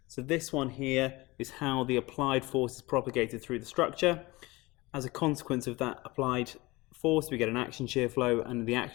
So this one here is how the applied force is propagated through the structure. As a consequence of that applied force, we get an action shear flow, and the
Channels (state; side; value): quieter; right; 21.9 dB